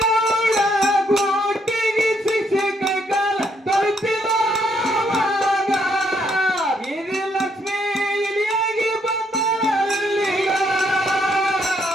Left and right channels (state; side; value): normal; both; correlation 0.72